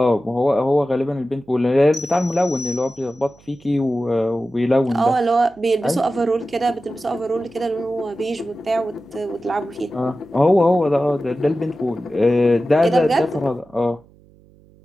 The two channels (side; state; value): right; noise; hum, 28 dB below the sound